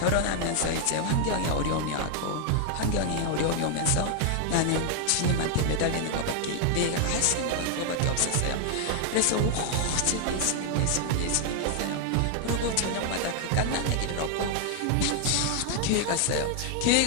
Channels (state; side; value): different; both; correlation 0.00